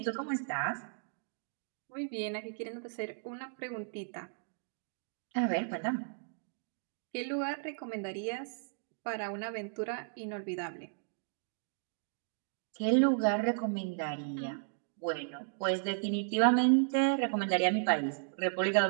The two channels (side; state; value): left; silent; digital silence